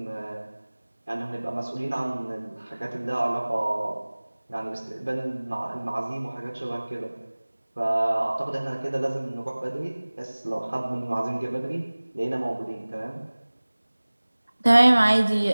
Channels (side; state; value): both; inverted; correlation -1.00